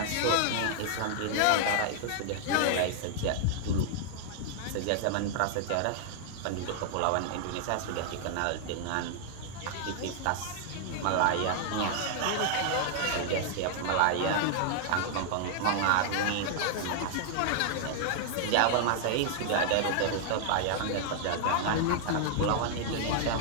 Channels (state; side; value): different; both; correlation 0.00